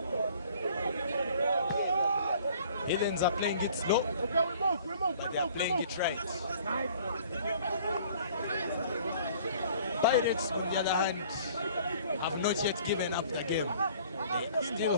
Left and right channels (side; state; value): both; inverted; correlation -0.53